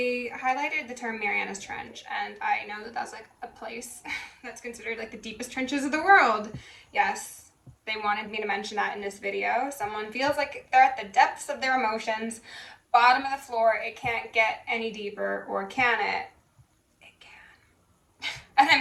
highlighted the term Mariana's Trench, and I know that that's like a place that's considered like the deepest trenches of the world. Yes, they wanted me to mention that in this video. Someone feels like they're at the depths of their emotions, bottom of the floor. It can't get any deeper, or can it? And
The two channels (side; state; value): both; identical; correlation 1.00